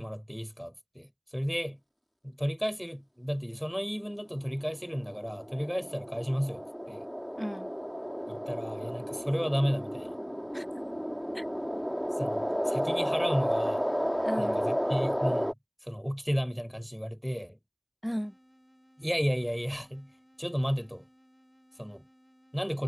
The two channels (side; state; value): both; identical; correlation 1.00